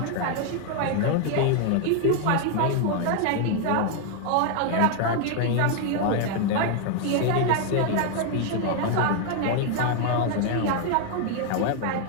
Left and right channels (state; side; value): different; both; correlation 0.00